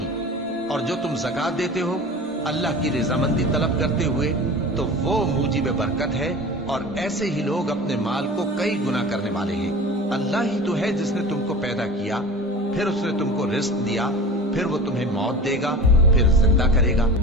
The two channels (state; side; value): normal; both; correlation 0.36